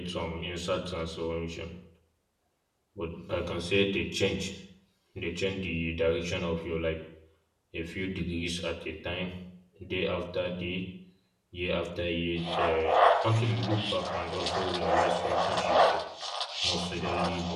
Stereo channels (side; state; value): both; identical; correlation 1.00